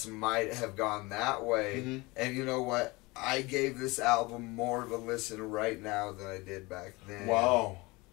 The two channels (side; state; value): right; quieter; 23.8 dB